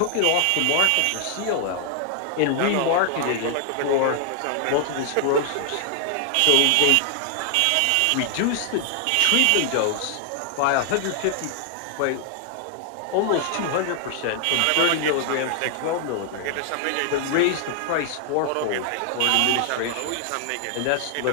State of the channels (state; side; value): different; both; correlation 0.00